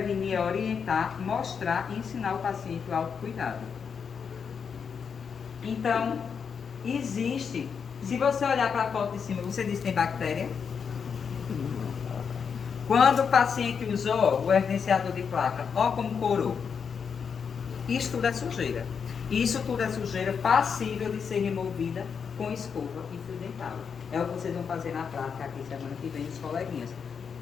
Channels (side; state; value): right; quieter; 6.5 dB